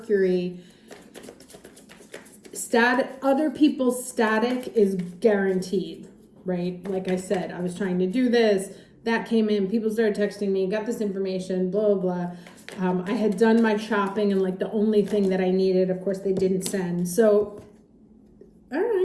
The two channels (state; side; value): identical; both; correlation 1.00